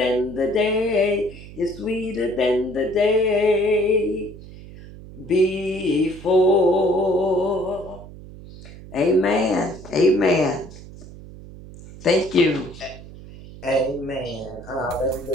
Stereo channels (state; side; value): noise; right; hum, 16 dB below the sound